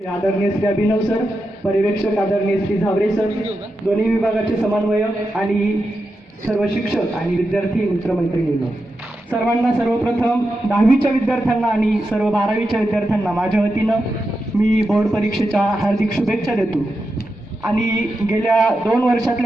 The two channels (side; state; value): both; normal; correlation 0.88